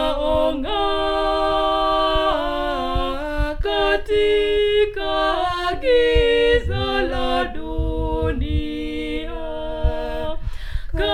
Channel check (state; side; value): identical; both; correlation 1.00